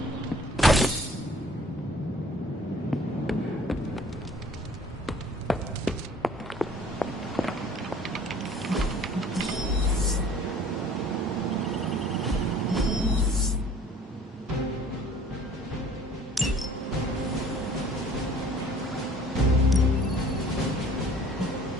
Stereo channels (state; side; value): normal; both; correlation 0.53